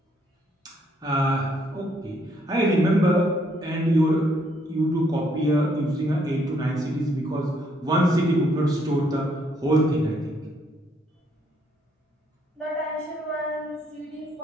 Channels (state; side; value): normal; both; correlation 0.70